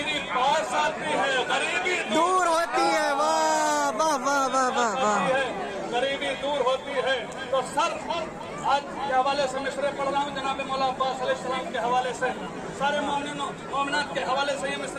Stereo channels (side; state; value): both; identical; correlation 1.00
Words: पास आती है, गरीबी दूर होती है। वाह वाह वाह वाह वाह वाह। गरीबी दूर होती है। तो सर आज के हवाले से मिसरे पढ़ रहा हूँ, जनाब मौला अब्बास अलैहिस्सलाम के हवाले से, सारे मोमिनात के हवाले से ये